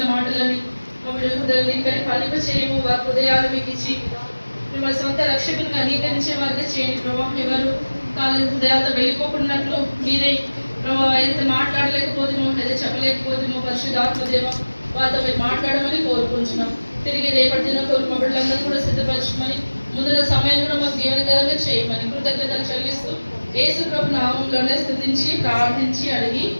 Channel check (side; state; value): both; inverted; correlation -1.00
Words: మాటలని మా బిడ్డల హృదయాలు ఇక్కడ ఫలింప చేయము. వారి హృదయాలు మీకు ఇచ్చి మిమ్మల్ని సొంత రక్షకులుగా అంగీకరించే వారిగా చేయండి ప్రభావ. ఎవరు కాలేజీ హృదయాలతో వెళ్ళిపోకున్నట్లు మీరే ప్రభావ ఏదైతే మాట్లాడలేకపోతేమో, ఏదైతే చెప్పలేకపోతేమో పరిశుద్ధాత్మ దేవ వారితో మీరు మాట్లాడమని కోరుకుంటున్నాం. తిరిగి రేపటి దిన కోరు మా బిడ్డలందరూ కూడా సిద్ధపరచమని, ముందున్న సమయం కూడా మాకు దీవెనకరంగా చేయమని కృతజ్ఞతలు చెల్లిస్తూ యేసు ప్రభు నామంలోనే స్తుతించి ప్రార్థించి అడిగి